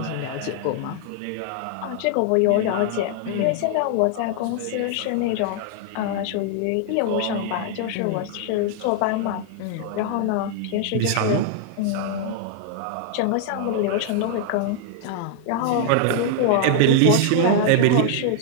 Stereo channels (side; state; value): both; different; correlation 0.00